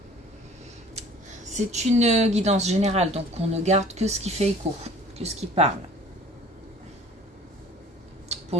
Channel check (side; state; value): both; normal; correlation 0.48